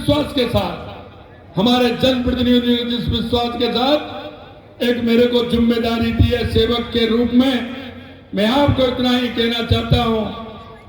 के साथ, हमारे जनप्रतिनिधियों ने जिस विश्वास के साथ एक मेरे को जिम्मेदारी दी है सेवक के रूप में, मैं आपको इतना ही कहना चाहता हूं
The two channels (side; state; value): both; identical; correlation 1.00